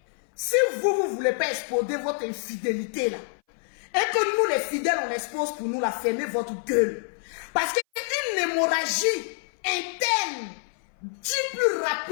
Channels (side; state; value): right; silent; 58 dB below the other